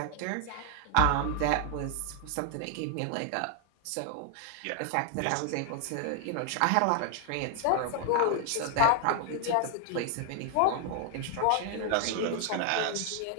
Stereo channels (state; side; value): different; both; correlation 0.00